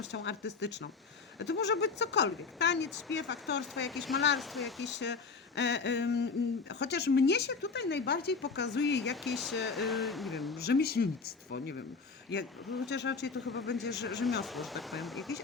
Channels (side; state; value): right; quieter; 4.8 dB